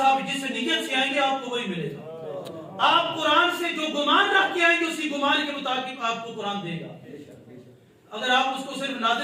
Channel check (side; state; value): both; identical; correlation 1.00